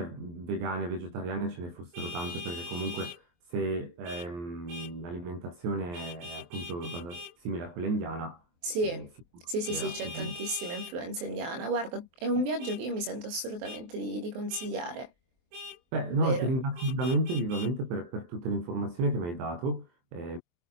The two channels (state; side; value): late; left; 23 ms